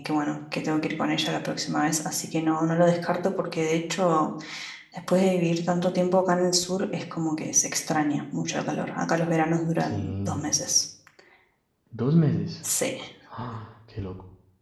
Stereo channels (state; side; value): identical; both; correlation 1.00